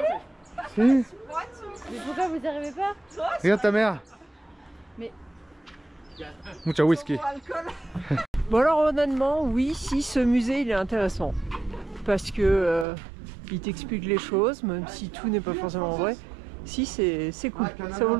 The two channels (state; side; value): drops out; left; at 12.9 s